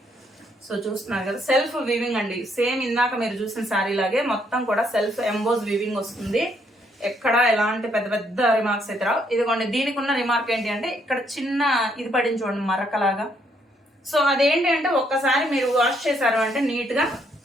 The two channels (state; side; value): normal; both; correlation 0.71